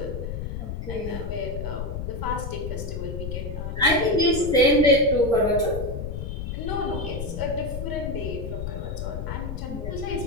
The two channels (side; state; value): left; noise; rumble, 5 dB below the sound